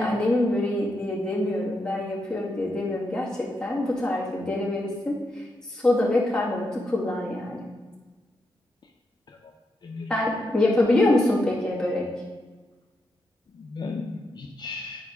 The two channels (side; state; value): both; normal; correlation 0.83